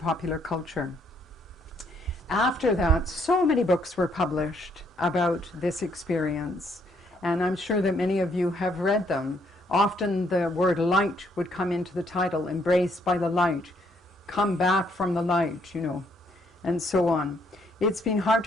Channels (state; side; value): normal; both; correlation 0.70